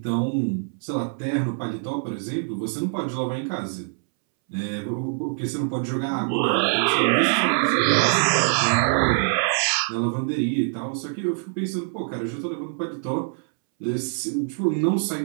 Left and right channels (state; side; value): silent; left; 62 dB below the other